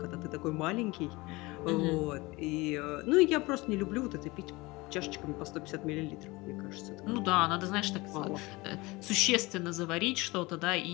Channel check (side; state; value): right; quieter; 22.7 dB